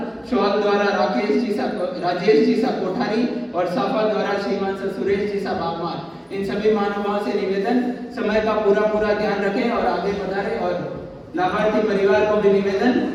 शॉल द्वारा राजेश जी सा कोठारी और साफा द्वारा श्रीमान सा सुरेश जी सा बागमार। इन सभी महानुभावों से निवेदन समय का पूरा ध्यान रखें और आगे बढ़ाएं और लाभार्थी परिवार को भी निवेदन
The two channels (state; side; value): identical; both; correlation 1.00